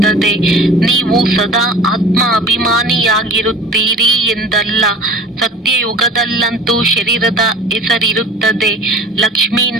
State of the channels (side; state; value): both; normal; correlation 0.42